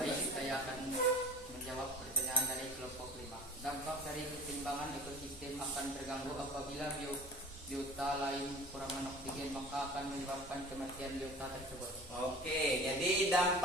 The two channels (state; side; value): normal; both; correlation 0.42